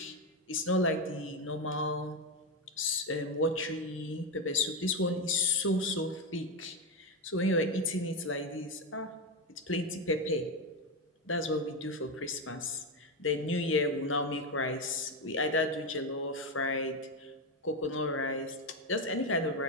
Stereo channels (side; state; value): both; normal; correlation 0.11